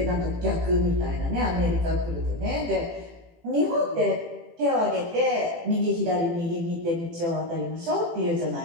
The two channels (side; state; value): left; late; 18 ms